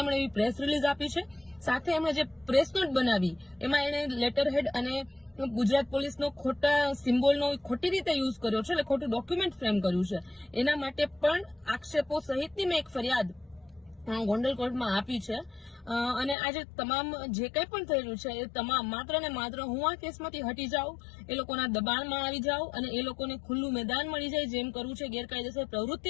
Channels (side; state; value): right; drops out; at 16.4 s